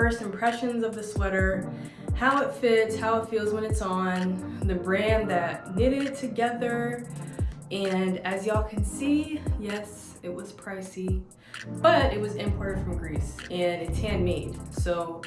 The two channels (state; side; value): identical; both; correlation 1.00